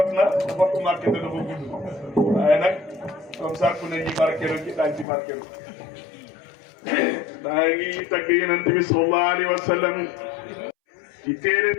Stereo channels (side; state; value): right; drops out; at 5.1 s